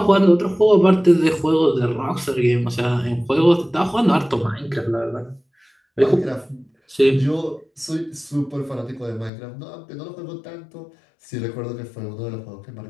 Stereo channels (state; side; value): drops out; right; at 9.3 s